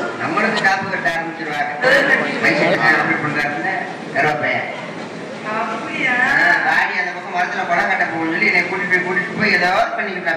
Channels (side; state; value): both; identical; correlation 1.00